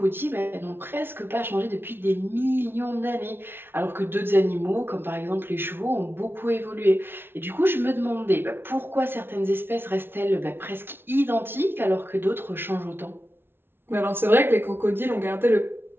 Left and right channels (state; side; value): late; left; 0.11 ms